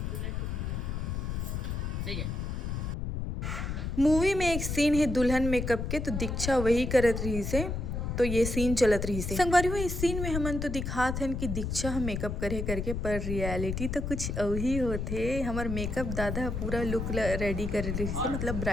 ठीक है। मूवी में एक सीन है दुल्हन मेकअप के, तो दीक्षा वही करत रही से। तो ये सीन चलत रही से संगवारी हुआ। इस सीन में हमन तो दिखात हन कि दीक्षा हम मेकअप करे करके, पर रियलिटी तो कुछ वही होते। हमार मेकअप दादा पूरा लुक रेडी करे रही से, मतलब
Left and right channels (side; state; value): left; noise; rumble, 3 dB below the sound